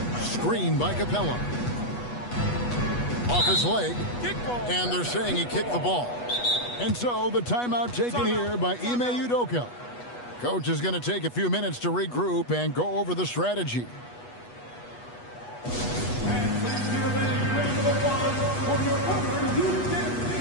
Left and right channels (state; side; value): late; right; 8.2 ms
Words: Screen by Capella. Off his leg. And they're saying he kicked the ball. And so the timeout taken here by Ime Udoka. Coach is going to take a few minutes to regroup and go over the strategy.